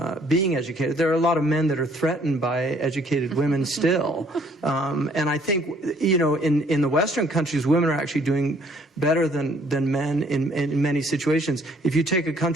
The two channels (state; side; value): normal; both; correlation 0.62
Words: being educated. There are a lot of men that are threatened by educated women still. And I think, you know, in the Western countries, women are actually doing better than men in many situations. If you take a